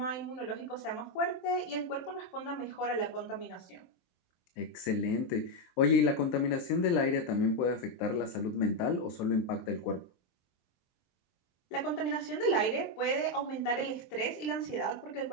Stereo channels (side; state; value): right; late; 23 ms